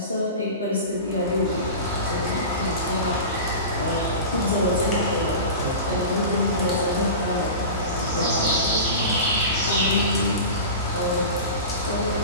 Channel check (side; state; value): both; inverted; correlation -0.30